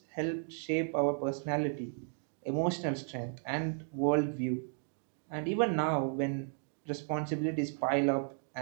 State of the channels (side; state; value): left; silent; 55 dB below the other